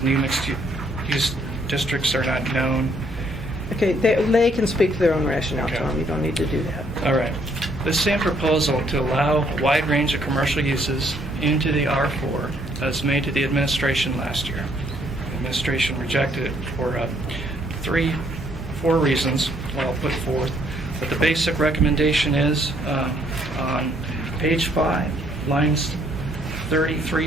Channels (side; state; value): both; normal; correlation 0.68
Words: new mixed-use districts are not known. Okay, they can speak to their own rationale, Tom. You don't need to do that. All right. The same proposal to allow a wide range of commercial uses into the R4 was made to the administration last year. The administration rejected it for 4 reasons I'll put forth. But the basic recommendation is on page 5, lines